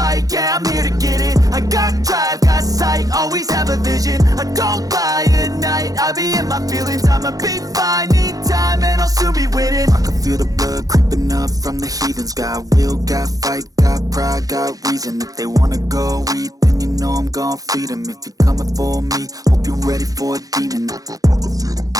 yeah, I'm here to get it. I got drive, got sight, always have a vision. I go by at night, I be in my feelings. I'ma be fine, need time and I'll soon be winning. I can feel the blood creeping up from the heathens. Got will, got fight, got pride, got reason. If they wanna go eat, then you know I'm gon' feed them. If you're coming for me, hope you're ready for a demon. I can feel the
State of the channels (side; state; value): left; late; 0.17 ms